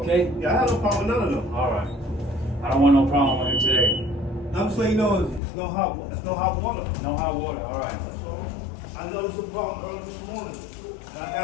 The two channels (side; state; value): right; drops out; at 5.4 s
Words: Yeah, I have no problem with none of them. All right. I don't want no problem with him today. I'm just letting you know it's no hot water. No hot water. All right. I noticed a problem early this morning. And I